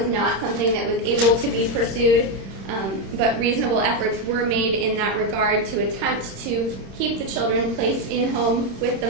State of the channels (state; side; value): late; left; 26 ms